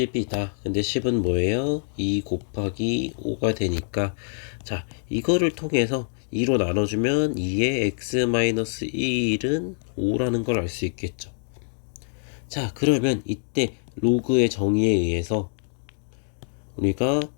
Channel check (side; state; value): right; silent; digital silence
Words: 근데 10은 뭐예요? 2 곱하기 5가 되니까 자 이거를 통해서 2로 나눠주면 2의 x-1은 5라는 걸 알 수 있겠죠. 자 그러면 이때 로그의 정의에 의해서 우리가